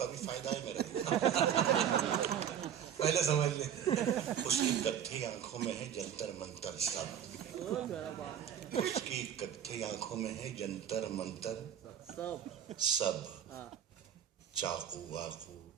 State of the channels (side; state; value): left; quieter; 9.3 dB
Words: بھی فائدہ ہے میرا. پہلے سمجھ لیں. اس کی کتھی آنکھوں میں ہے جنتر منتر سب. اس کی کتھی آنکھوں میں ہے جنتر منتر سب. چاقو واقو